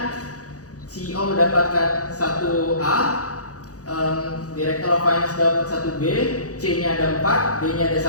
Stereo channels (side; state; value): right; late; 0.67 ms